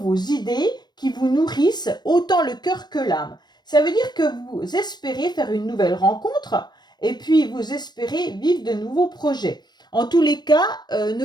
idées qui vous nourrissent autant le cœur que l'âme. Ça veut dire que vous espérez faire une nouvelle rencontre et puis vous espérez vivre de nouveaux projets. En tous les cas,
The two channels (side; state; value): right; late; 0.21 ms